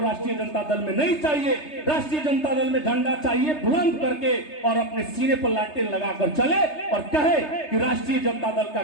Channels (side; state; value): right; late; 3.3 ms